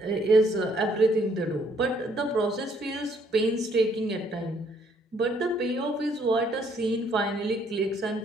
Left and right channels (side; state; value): both; normal; correlation 0.66